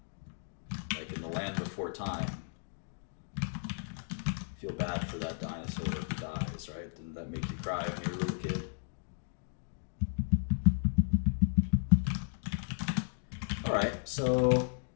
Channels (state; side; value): silent; right; digital silence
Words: like in the land before time. Feel bad for that dinosaur who dies, right? Didn't that make you cry when you were a little kid? All right, so